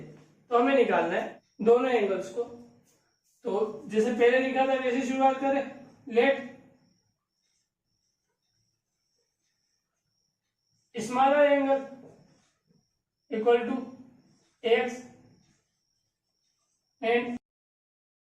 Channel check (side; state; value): both; identical; correlation 1.00